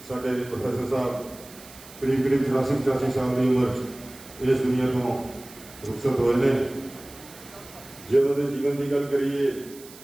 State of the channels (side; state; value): right; noise; hiss, 19 dB below the sound